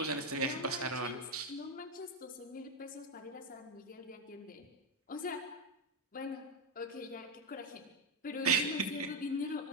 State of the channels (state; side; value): normal; both; correlation 0.05